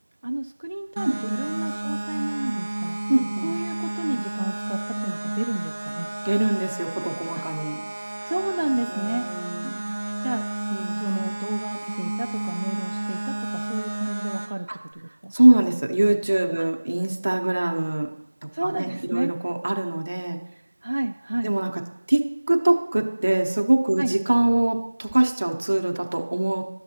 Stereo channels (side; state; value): both; inverted; correlation -1.00